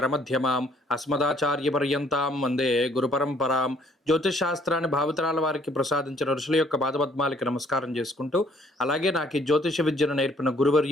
అస్మదాచార్యపర్యంతాం వందే గురుపరంపరాం. జ్యోతిష్ శాస్త్రాన్ని భావితరాల వారికి ప్రసాదించిన ఋషుల యొక్క పాదపద్మాలకి నమస్కారం చేసుకుంటూ, అలాగే నాకు ఈ జ్యోతిష విద్యను నేర్పిన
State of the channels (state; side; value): normal; both; correlation 0.62